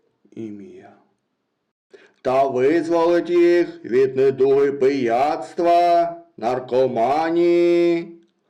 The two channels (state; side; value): identical; both; correlation 1.00